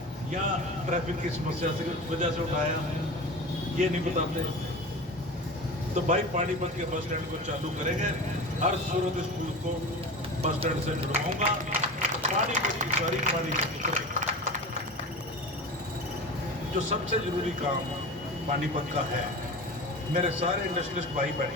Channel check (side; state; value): both; normal; correlation 0.31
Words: या ट्रैफिक की समस्या की वजह से उठाया, ये नहीं बताते। तो भाई पानीपत के बस स्टैंड को चालू करेंगे, हर सूरत स्कूल को बस स्टैंड से जुड़वाऊंगा। पानीपत की सारी पानी, जो सबसे जरूरी काम पानीपत का है, मेरे सारे इंडस्ट्रियलिस्ट भाई